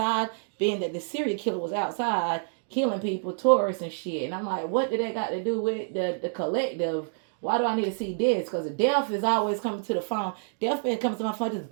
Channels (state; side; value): silent; left; digital silence